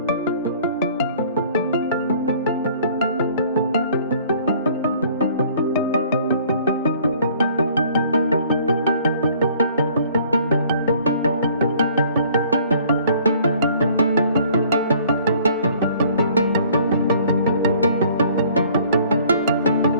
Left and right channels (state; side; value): inverted; both; correlation -0.56